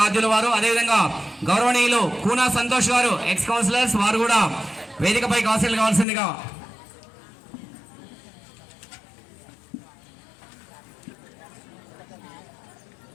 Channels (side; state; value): right; drops out; at 6.1 s